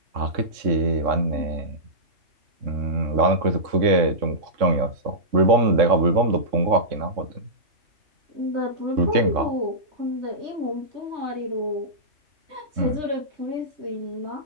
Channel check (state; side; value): late; left; 3.6 ms